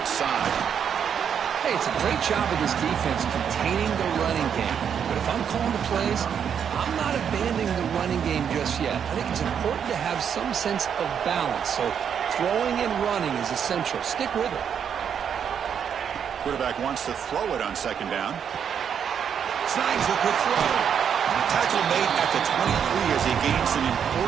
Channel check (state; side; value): quieter; left; 7.9 dB